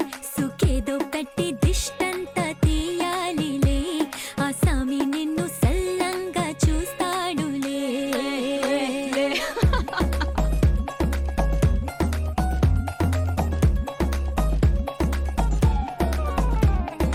సుఖేదో పెట్టి దిష్టంత తీయాలిలే ఆ సామి నిన్ను సల్లంగా చూస్తాడులే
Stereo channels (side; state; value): both; identical; correlation 1.00